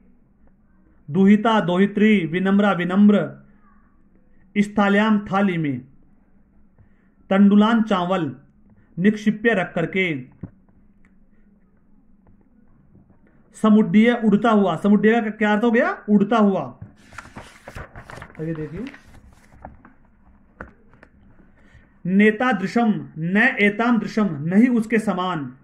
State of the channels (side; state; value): both; identical; correlation 1.00